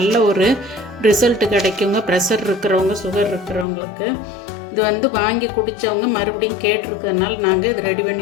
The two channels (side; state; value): right; drops out; at 3.7 s